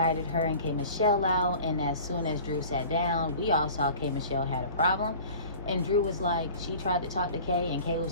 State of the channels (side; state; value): both; inverted; correlation -0.42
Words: her and K. Michelle out, and as soon as Drew sat down, we all saw K. Michelle had a problem. And Drew was like, she tried to talk to Kay, and Kay